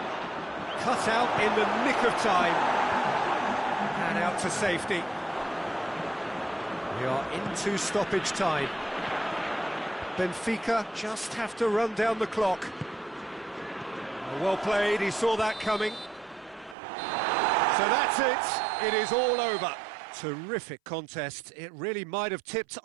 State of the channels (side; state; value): left; drops out; at 16.8 s